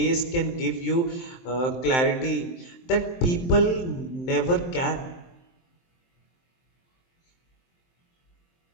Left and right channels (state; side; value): late; right; 23 ms